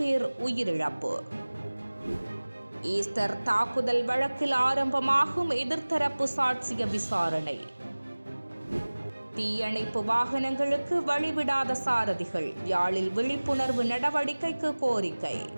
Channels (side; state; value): both; inverted; correlation -1.00